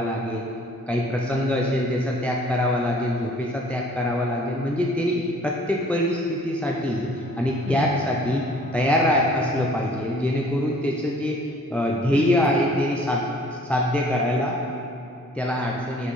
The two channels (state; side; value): normal; both; correlation 0.54